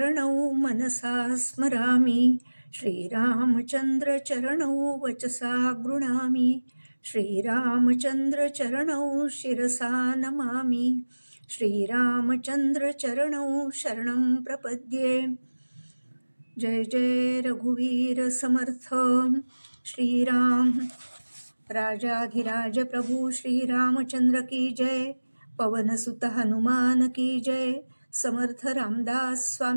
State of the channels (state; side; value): inverted; both; correlation -1.00